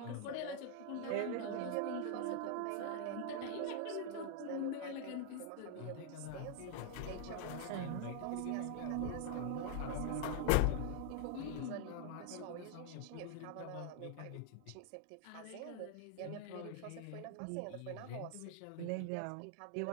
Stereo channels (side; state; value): both; different; correlation 0.00